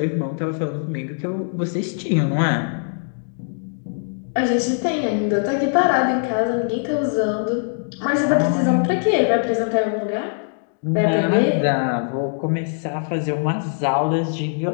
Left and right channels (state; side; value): silent; right; digital silence